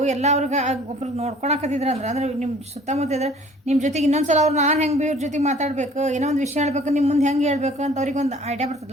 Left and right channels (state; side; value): normal; both; correlation 0.52